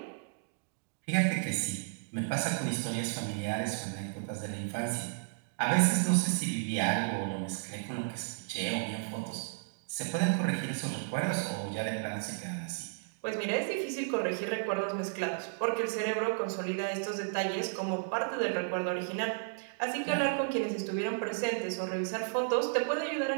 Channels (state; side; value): silent; left; digital silence